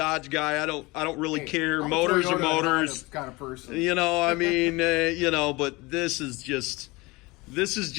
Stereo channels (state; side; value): quieter; right; 23.5 dB